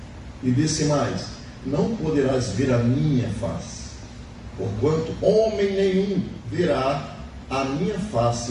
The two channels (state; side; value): identical; both; correlation 1.00